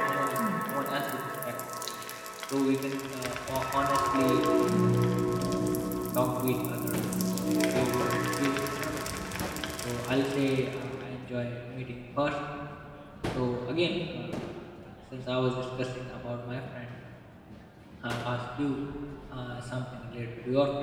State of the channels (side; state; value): both; identical; correlation 1.00